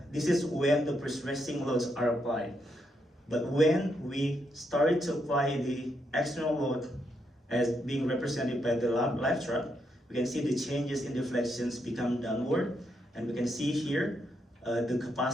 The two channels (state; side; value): normal; both; correlation 0.79